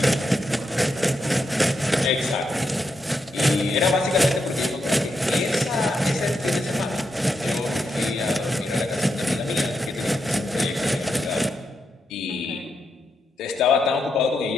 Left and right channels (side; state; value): both; normal; correlation 0.83